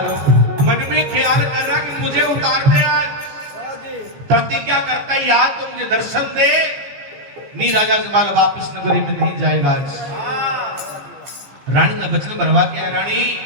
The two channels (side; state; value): left; late; 15 ms